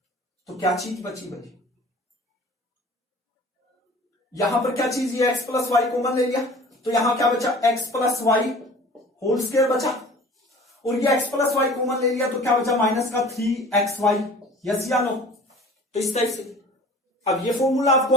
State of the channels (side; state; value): both; normal; correlation 0.44